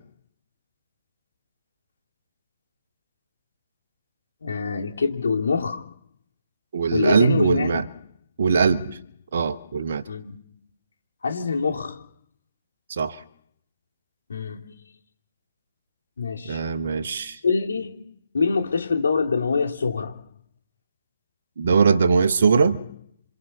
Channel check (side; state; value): both; inverted; correlation -0.81